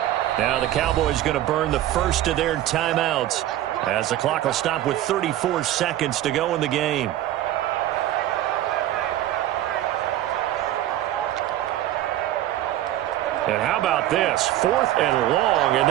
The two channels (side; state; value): left; quieter; 13.5 dB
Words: Now the Cowboys going to burn the first of their timeouts as the clock will stop with 34 seconds to go in the game. And how about this? 4th and long, and